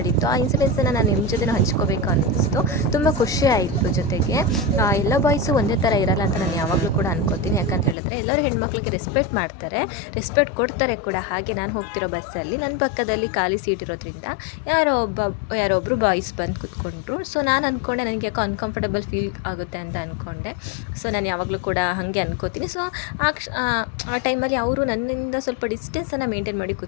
ಆ ಇನ್ಸಿಡೆನ್ಸನ್ನು ನಾನು ನಿಮ್ಮ ಜೊತೆ ಹಂಚ್ಕೋಬೇಕು ಅನ್ನಿಸ್ತು. ತುಂಬ ಖುಷಿ ಆಯಿತು. ಜೊತೆಗೆ ಎಲ್ಲ ಬಾಯ್ಸು ಒಂದೇ ಥರ ಇರಲ್ಲ ಅಂತ ನಾನು ಯಾವಾಗಲೂ ಕೂಡ ಅನ್ಕೋತೀನಿ. ಯಾಕಂತ ಹೇಳಿದ್ರೆ ಎಲ್ಲರೂ ಹೆಣ್ಮಕ್ಳಿಗೆ ರೆಸ್ಪೆಕ್ಟ್ ಮಾಡ್ತಾರೆ, ರೆಸ್ಪೆಕ್ಟ್ ಕೊಡ್ತಾರೆ ಕೂಡ. ಹಾಗೆ ನಾನು ಹೋಗ್ತಿರೋ ಬಸ್ಸಲ್ಲಿ ನನ್ನ ಪಕ್ಕದಲ್ಲಿ ಖಾಲಿ ಸೀಟ್ ಇರೋದ್ರಿಂದ ಯಾರೊಬ್ಬರು ಬಾಯ್ಸ್ ಬಂದು ಕೂತ್ಕೊಂಡ್ರು. ಸೊ ನಾನು ಅಂದ್ಕೊಂಡೆ ನನಗೆ ಯಾಕೋ ಅನ್ಕಂಫರ್ಟಬಲ್ ಫೀಲ್ ಆಗುತ್ತೆ ಅಂತ ಅಂದ್ಕೊಂಡೆ. ಸೊ ನಾನು ಯಾವಾಗಲೂ ಕೂಡ ಹಾಗೆ ಅನ್ಕೋತೀನಿ. ಸೊ ಆ ಟೈಮಲ್ಲಿ ಅವರು ನನ್ನಿಂದ ಸ್ವಲ್ಪ ಡಿಸ್ಟೆನ್ಸನ್ನು ಮೇಂಟೈನ್ ಮಾಡಿ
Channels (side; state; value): right; drops out; at 8.0 s